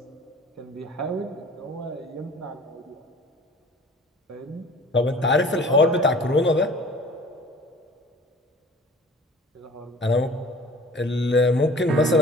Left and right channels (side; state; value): both; normal; correlation 0.47